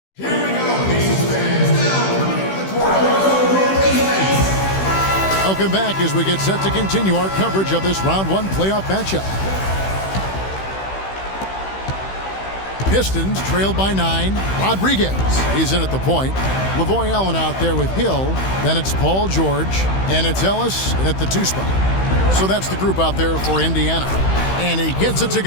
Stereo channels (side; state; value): right; late; 16 ms